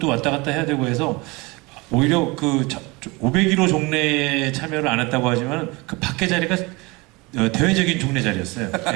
왔다 갔다 해야 되고 해서 오히려 그 501호 종례에 참여를 안 했다고 하지만 그 밖에 자리가 대외적인 종례 자리였어요.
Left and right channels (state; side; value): quieter; left; 25.0 dB